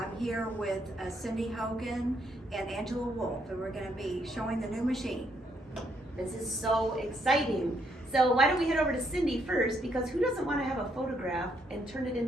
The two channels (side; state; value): both; normal; correlation 0.73